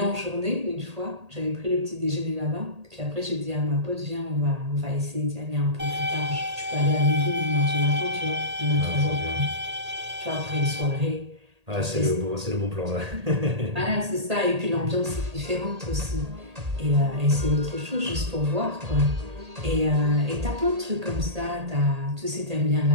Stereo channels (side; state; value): left; late; 1.8 ms